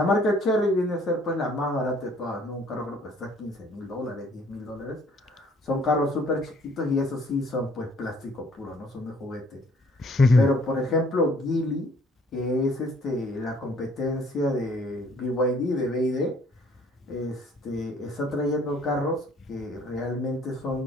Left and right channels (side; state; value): both; normal; correlation 0.59